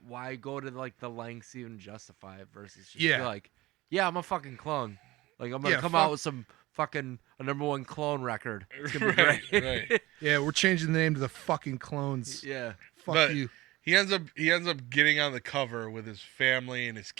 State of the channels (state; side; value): quieter; left; 19.1 dB